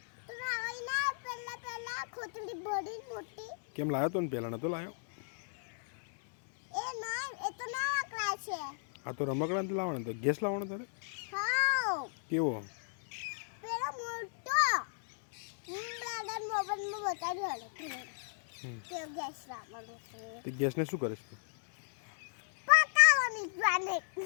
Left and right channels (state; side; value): silent; right; digital silence